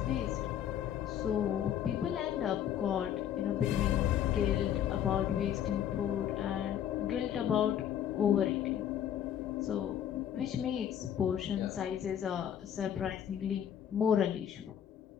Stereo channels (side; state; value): right; quieter; 9.9 dB